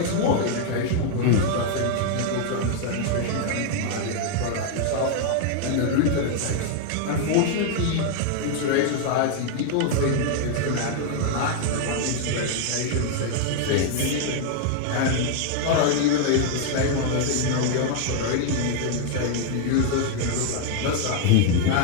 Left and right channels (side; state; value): both; different; correlation 0.00